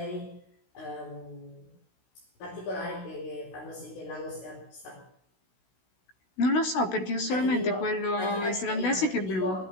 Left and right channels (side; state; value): right; late; 16 ms